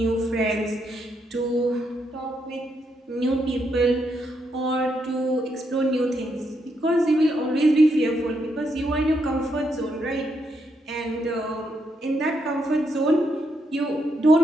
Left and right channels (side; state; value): both; normal; correlation 0.78